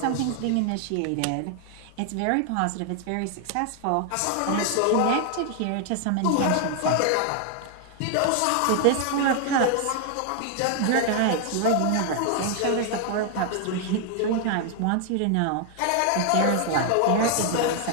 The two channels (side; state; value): both; different; correlation 0.00